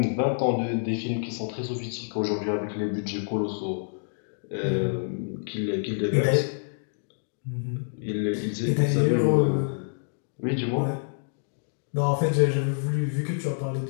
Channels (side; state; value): right; silent; digital silence